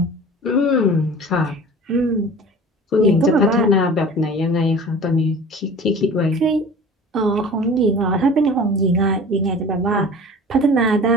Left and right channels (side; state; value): both; normal; correlation 0.41